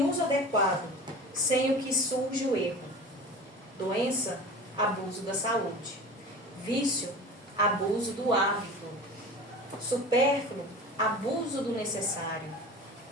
uso adequado, sem o que surge o erro. Doença, abuso da saúde. Vício, abuso do hábito. Supérfluo, abuso do necessário.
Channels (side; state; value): both; normal; correlation 0.36